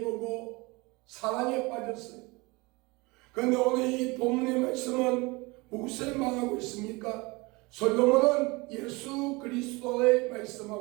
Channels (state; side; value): quieter; left; 24.8 dB